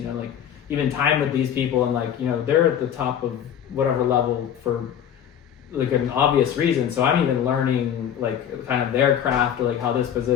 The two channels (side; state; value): right; quieter; 9.4 dB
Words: know, like even time with these people, and like, you know, they're at the top of whatever level for like an obvious reason. So I'm even learning like kind of their craft, or like how this